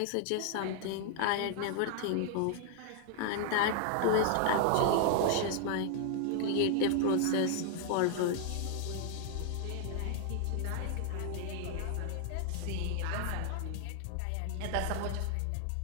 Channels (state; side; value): different; both; correlation 0.00